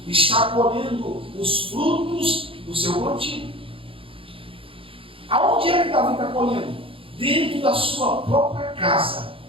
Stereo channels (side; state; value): left; late; 0.26 ms